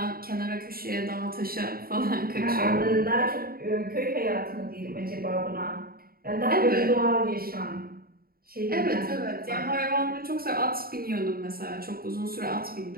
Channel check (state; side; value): late; left; 0.43 ms